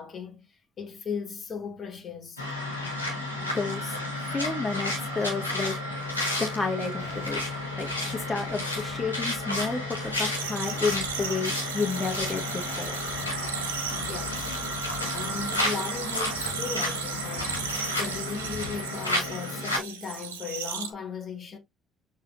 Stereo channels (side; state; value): both; normal; correlation 0.31